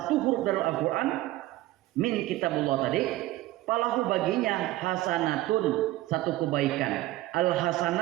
huruf dari Al-Quran min kitabullah tadi, falahu baginya hasanatun, satu kebaikan. Al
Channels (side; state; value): left; quieter; 16.8 dB